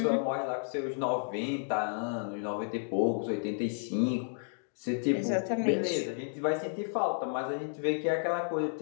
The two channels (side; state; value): right; silent; digital silence